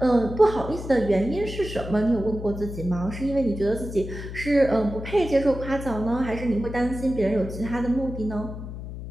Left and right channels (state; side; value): noise; left; hum, 9 dB below the sound